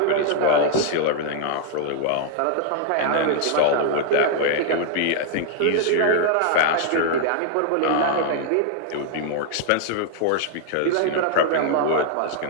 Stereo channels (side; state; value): both; different; correlation -0.01